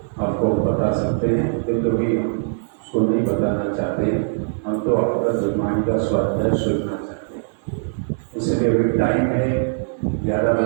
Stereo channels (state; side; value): silent; left; digital silence